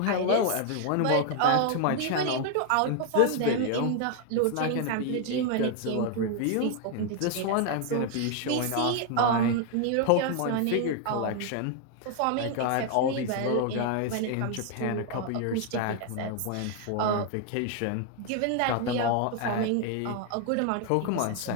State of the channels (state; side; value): different; both; correlation 0.00